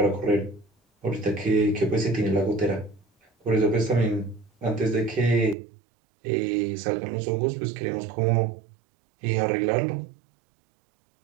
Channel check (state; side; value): drops out; left; at 5.6 s